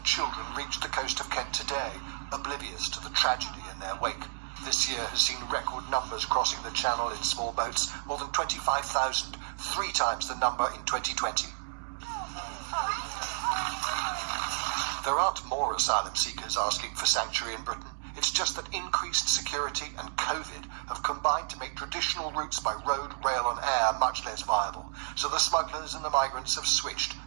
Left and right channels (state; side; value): silent; left; digital silence